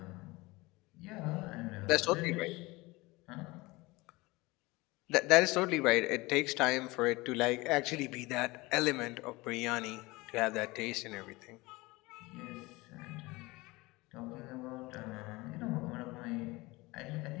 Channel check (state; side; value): quieter; right; 22.3 dB